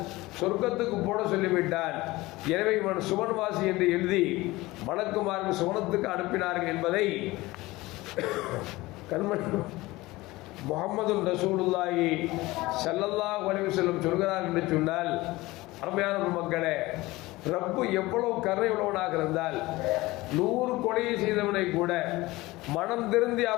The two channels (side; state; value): right; quieter; 19.9 dB